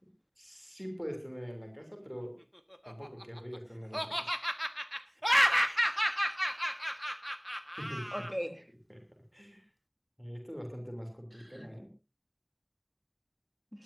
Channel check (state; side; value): identical; both; correlation 1.00